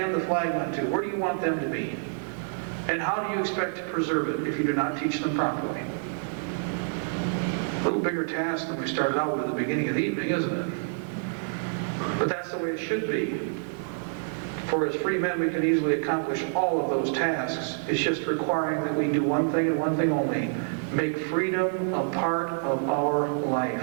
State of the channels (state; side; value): silent; left; 60 dB below the other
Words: the flag on to, where do you want them to be? And how do you expect to preserve it if you do not teach them properly? A little bigger task than we started out with at the beginning of the evening, isn't it? But that's the way it should be. For as free men, we can easily accomplish all of those tasks. It's just requiring that we do one thing and one thing only. Make freedom a part of our life.